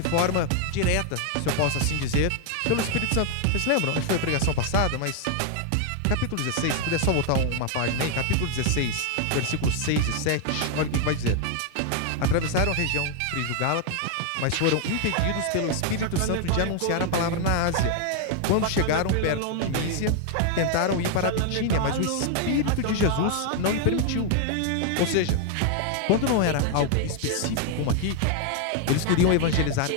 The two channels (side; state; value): both; different; correlation 0.00